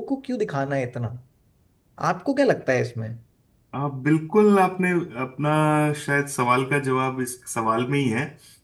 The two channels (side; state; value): both; identical; correlation 1.00